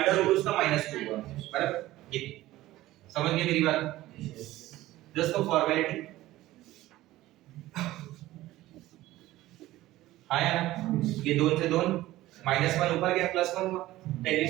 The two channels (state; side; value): quieter; left; 16.3 dB